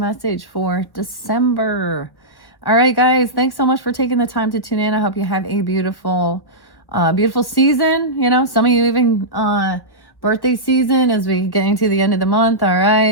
for December. All right, guys, thanks so much for taking the time to tune in. I hope you have a beautiful season. You know, some of you even birthday season as we get into the end of the month. All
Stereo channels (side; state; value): right; late; 1.1 ms